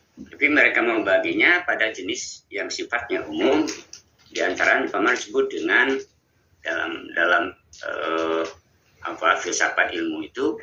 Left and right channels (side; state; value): both; identical; correlation 1.00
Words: Tapi mereka membaginya pada jenis yang sifatnya umum, di antara paman disebut dengan dalam filsafat ilmu itu